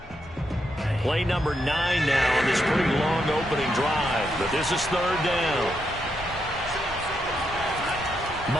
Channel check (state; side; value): normal; both; correlation 0.81